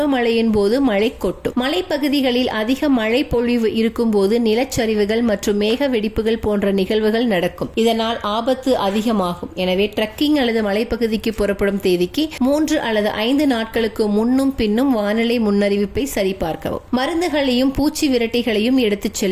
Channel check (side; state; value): both; identical; correlation 1.00